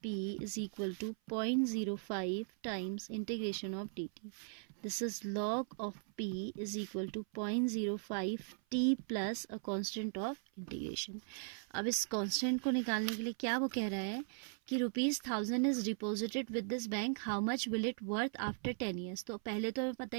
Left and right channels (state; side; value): silent; left; 52 dB below the other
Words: P is equal to 0.05 times integration of dt. This is log of P is equal to 0.05 t plus a constant of integration. अब इस constant को निकालने के लिए क्या वो कह रहा है कि ₹1000 is deposited with this bank, how much will it worth after 10 years. तो पहले तो हमें पता